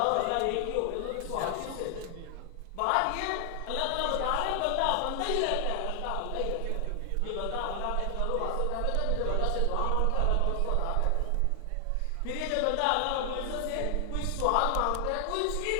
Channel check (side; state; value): both; different; correlation 0.00